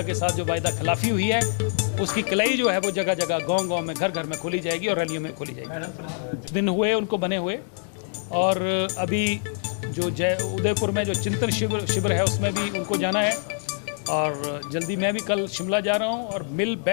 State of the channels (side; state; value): right; silent; 62 dB below the other